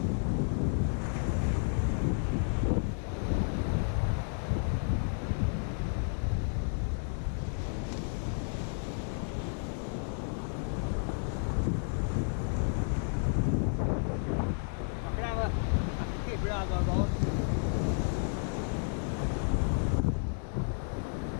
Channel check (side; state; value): right; silent; 56 dB below the other